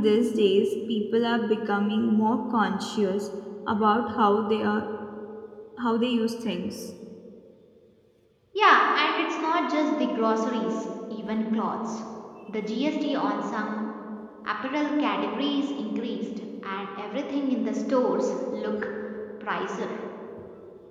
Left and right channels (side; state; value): both; identical; correlation 1.00